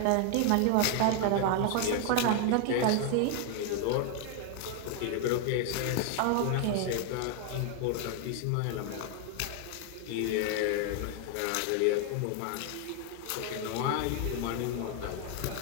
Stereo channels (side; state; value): both; different; correlation 0.00